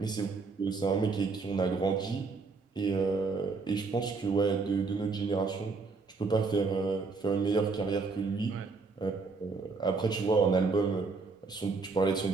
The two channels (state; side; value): quieter; left; 4.3 dB